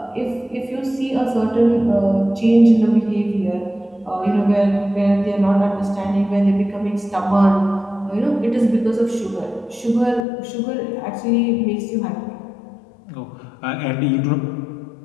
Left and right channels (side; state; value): right; drops out; at 10.2 s